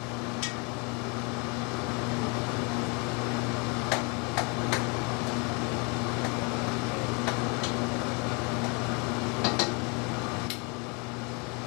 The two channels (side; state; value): right; quieter; 31.9 dB